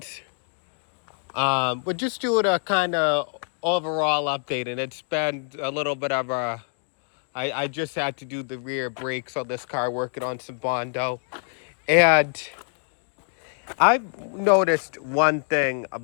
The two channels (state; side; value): silent; right; 61 dB below the other